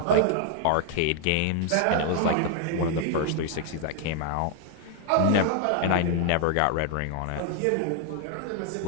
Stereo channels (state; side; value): different; both; correlation 0.00